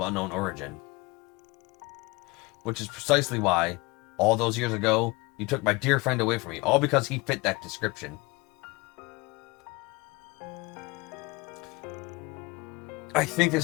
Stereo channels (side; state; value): right; quieter; 24.3 dB